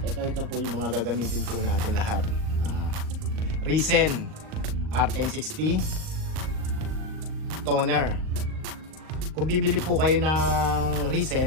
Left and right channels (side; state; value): left; late; 38 ms